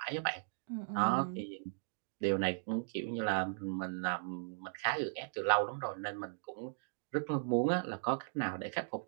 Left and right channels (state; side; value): silent; left; digital silence